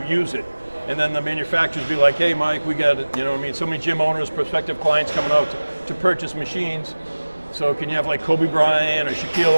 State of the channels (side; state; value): both; inverted; correlation -1.00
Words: use it. And then the manufacturers be like, hey Mike, we got so many gym owners, prospective clients coming out to purchase machines. So can you have like Kobe Bryant or